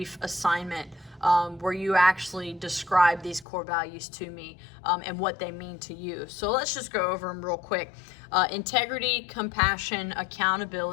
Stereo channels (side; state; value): right; drops out; at 3.5 s